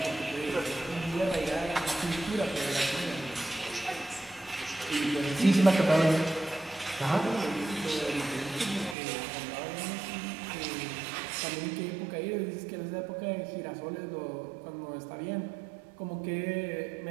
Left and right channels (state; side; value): drops out; left; at 9.0 s